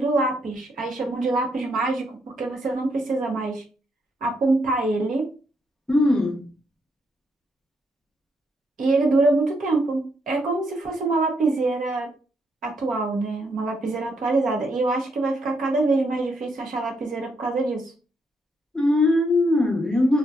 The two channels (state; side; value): normal; both; correlation 0.76